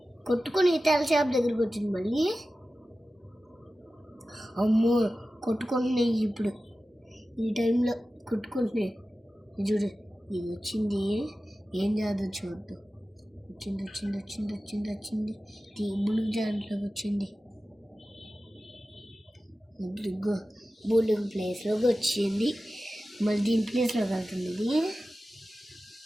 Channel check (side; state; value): both; normal; correlation 0.95